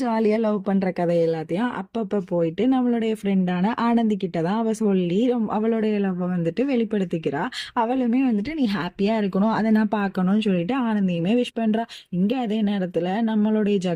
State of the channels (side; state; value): both; identical; correlation 1.00